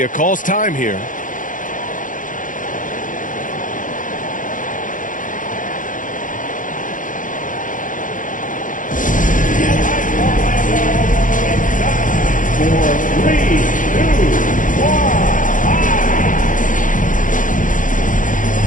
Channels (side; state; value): right; late; 0.38 ms